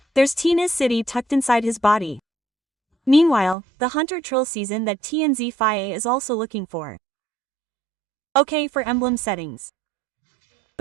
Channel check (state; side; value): drops out; left; at 3.6 s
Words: There's Tina's city tucked inside his body. Meanwhile, the Hunter Trill season that TNZ Faye is also looking for. Okay for emblem settings.